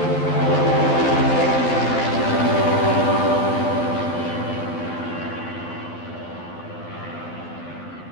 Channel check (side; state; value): right; late; 12 ms